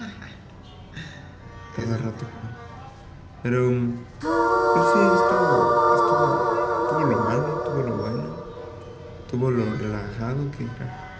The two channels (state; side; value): identical; both; correlation 1.00